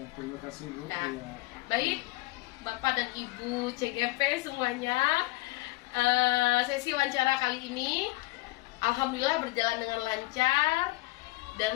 terima kasih Bu. Nah, baik Bapak dan Ibu CGP semuanya, sesi wawancara kali ini alhamdulillah berjalan dengan lancar.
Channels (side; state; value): right; quieter; 21.2 dB